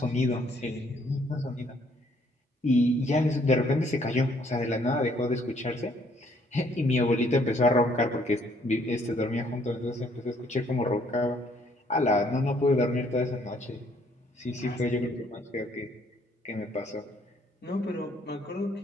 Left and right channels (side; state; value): both; normal; correlation 0.65